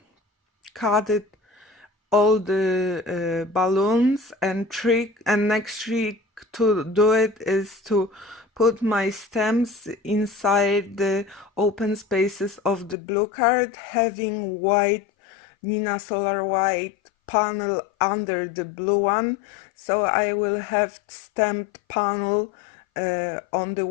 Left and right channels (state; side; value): drops out; right; at 13.0 s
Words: cut it all the balloons, and next trick to do it is to put my stamps inside the open spaces of the blue card, having white Nina Solar white panel under the blue one, so I will have stamped panel on the